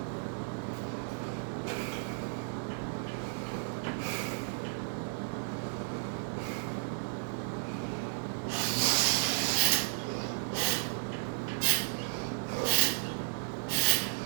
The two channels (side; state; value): left; silent; 55 dB below the other